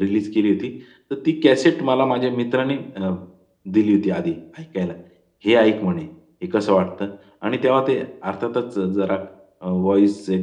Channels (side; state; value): both; identical; correlation 1.00